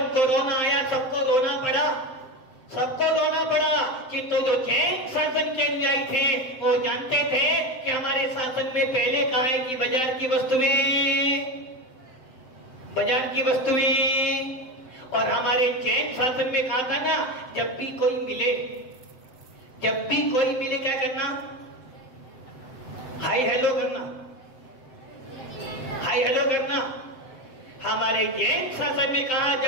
सबको रोना पड़ा कि तो जो जैन शासन के अनुयायी थे वो जानते थे कि हमारे शासन में पहले कहा है कि बाजार की वस्तुएं और हमारे जैन शासन में कहा था ना जब भी कोई मिले क्या करना, हाय हेलो करना। हमारे जैन शासन में कहा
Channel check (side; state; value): right; late; 7.7 ms